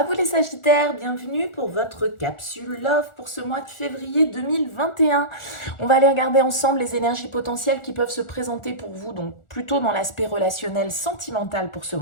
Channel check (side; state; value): right; late; 1.4 ms